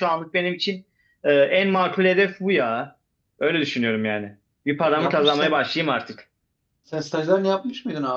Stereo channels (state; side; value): identical; both; correlation 1.00